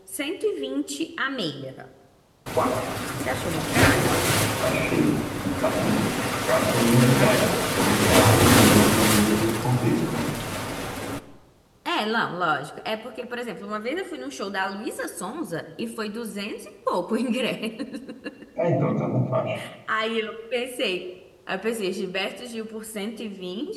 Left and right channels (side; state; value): both; identical; correlation 1.00